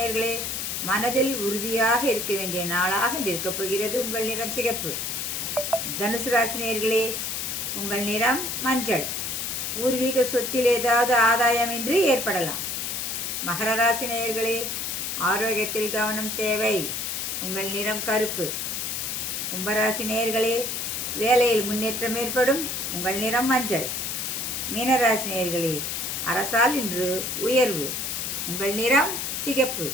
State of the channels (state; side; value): noise; left; hiss, 3 dB below the sound